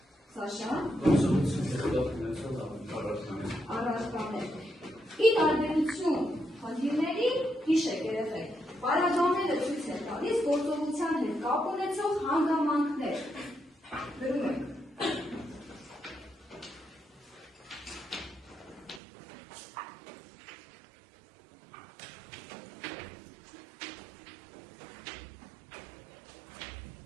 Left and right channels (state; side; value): drops out; left; at 19.0 s